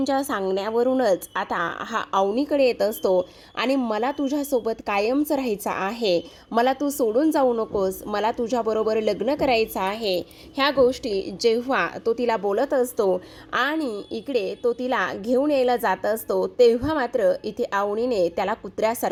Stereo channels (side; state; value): both; identical; correlation 1.00